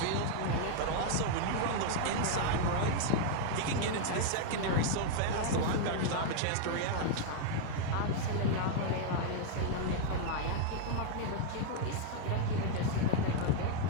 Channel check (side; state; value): both; different; correlation 0.00